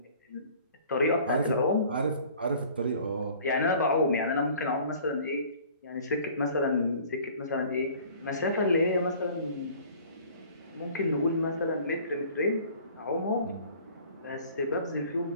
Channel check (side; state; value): both; inverted; correlation -0.50